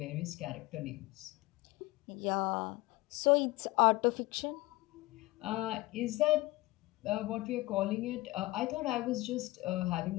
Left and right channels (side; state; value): right; quieter; 20.4 dB